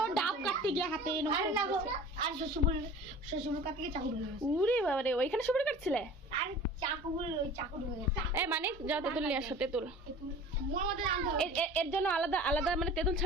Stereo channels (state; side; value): normal; both; correlation 0.42